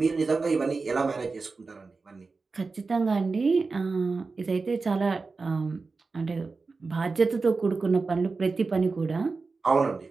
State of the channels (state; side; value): quieter; left; 4.1 dB